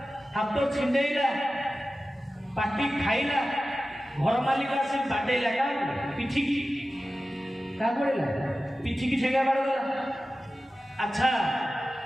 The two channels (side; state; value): both; normal; correlation 0.95